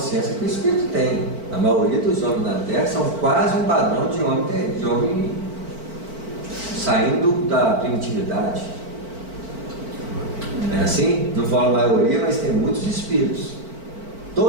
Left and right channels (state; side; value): late; left; 4.5 ms